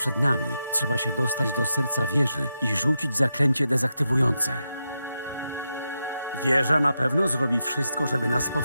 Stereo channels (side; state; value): both; inverted; correlation -0.87